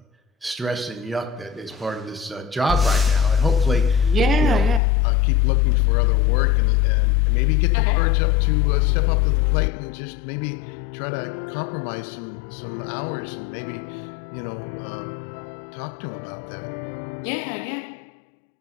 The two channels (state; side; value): drops out; right; at 4.8 s